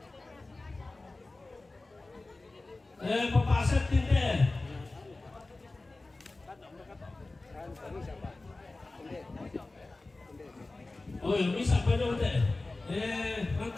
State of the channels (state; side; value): quieter; right; 3.2 dB